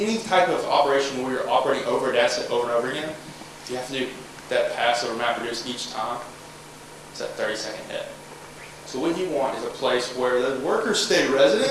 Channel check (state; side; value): identical; both; correlation 1.00